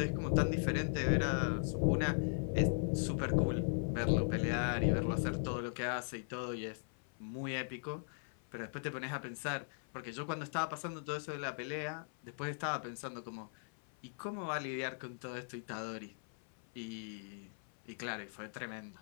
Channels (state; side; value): silent; right; 52 dB below the other